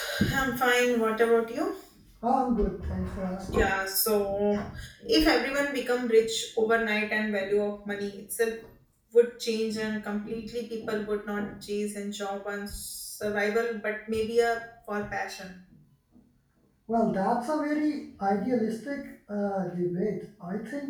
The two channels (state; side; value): identical; both; correlation 1.00